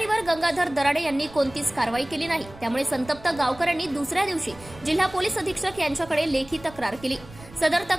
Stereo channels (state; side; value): noise; right; rumble, 19 dB below the sound